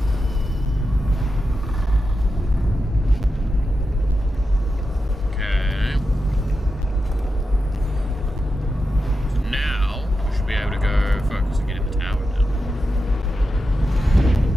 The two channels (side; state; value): both; normal; correlation 0.89